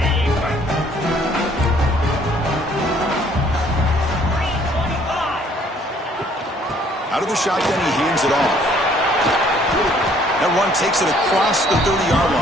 Out of the shotgun, he hands it off. That one takes it across the 30-yard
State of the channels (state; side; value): normal; both; correlation 0.61